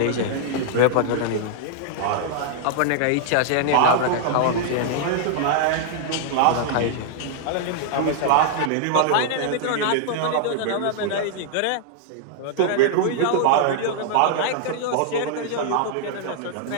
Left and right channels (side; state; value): both; different; correlation -0.01